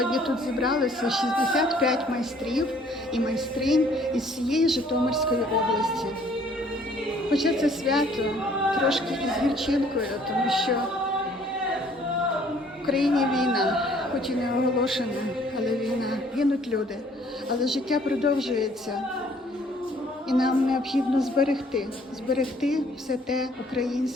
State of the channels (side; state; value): both; normal; correlation 0.59